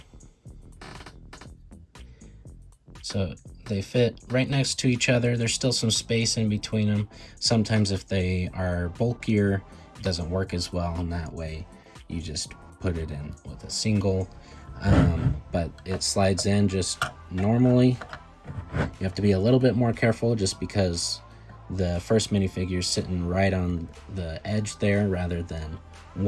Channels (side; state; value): both; identical; correlation 1.00